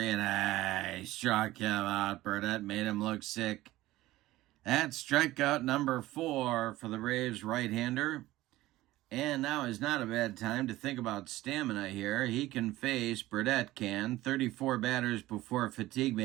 and he struck him out. Burdette made him look sick. That's strikeout number 4 for the Braves right-hander. And now is not a bad time to think about stamina here. He can face, Burdette can, 34 batters before fatigue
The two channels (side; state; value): left; quieter; 16.9 dB